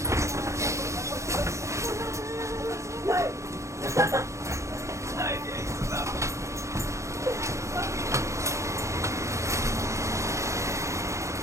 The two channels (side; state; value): left; late; 0.14 ms